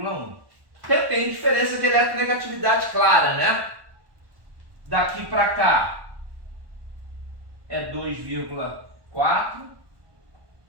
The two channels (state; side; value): late; left; 1.1 ms